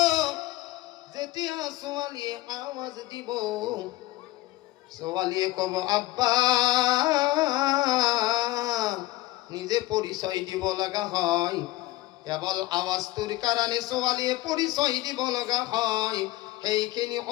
যেতিয়া ছোৱালীয়ে আৱাজ দিব, ছোৱালীয়ে কব আব্বা, নিজে পৰিচয় দিব লগা হয়। কেৱল আৱাজটোৰ কাৰণে ছোৱালীয়ে পৰিচয় দিব লগা হয়। সেইখিনি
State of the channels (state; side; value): quieter; right; 18.0 dB